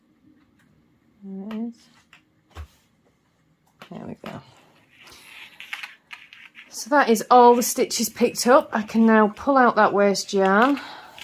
There it is. There we go. So that is all the stitches picked up. I can now pull out that waste yarn.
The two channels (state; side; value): identical; both; correlation 1.00